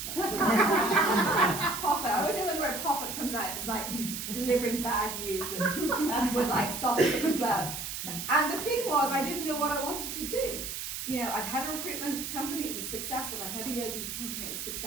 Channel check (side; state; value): right; noise; hiss, 6 dB below the sound